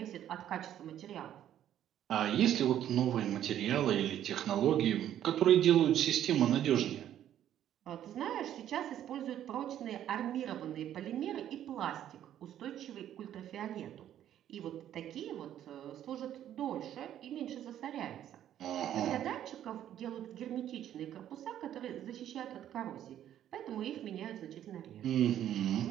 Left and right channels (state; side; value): quieter; left; 11.1 dB